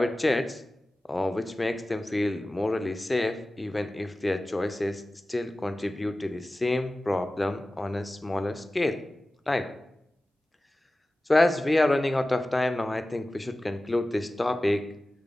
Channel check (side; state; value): both; normal; correlation 0.96